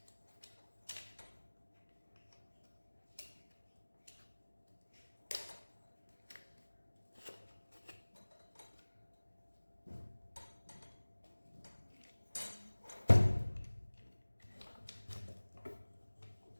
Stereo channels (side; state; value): both; inverted; correlation -1.00